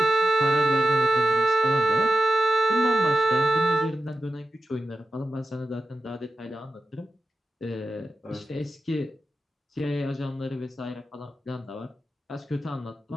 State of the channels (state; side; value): normal; both; correlation 0.91